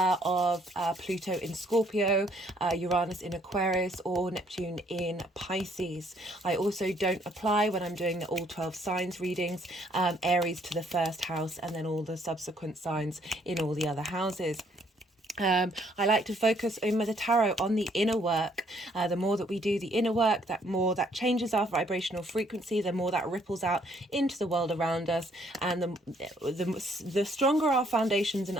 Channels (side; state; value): both; normal; correlation 0.66